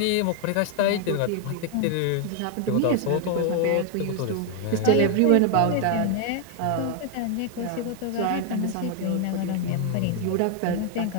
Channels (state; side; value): different; both; correlation 0.00